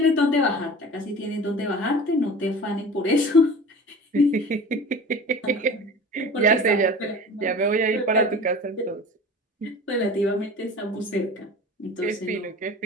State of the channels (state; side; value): normal; both; correlation 0.38